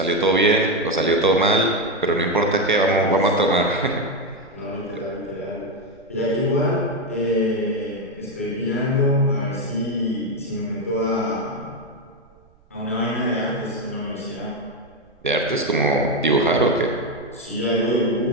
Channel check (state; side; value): noise; right; rumble, 30 dB below the sound